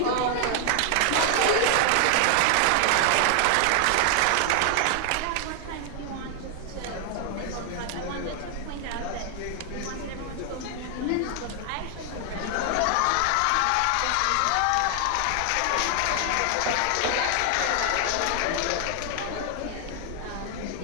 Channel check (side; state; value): both; different; correlation 0.00